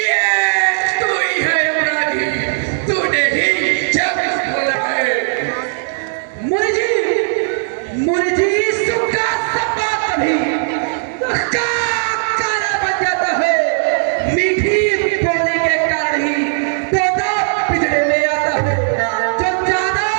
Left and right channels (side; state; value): left; silent; digital silence